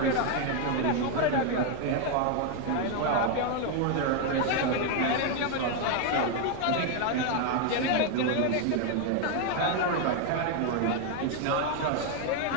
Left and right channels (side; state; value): both; different; correlation 0.01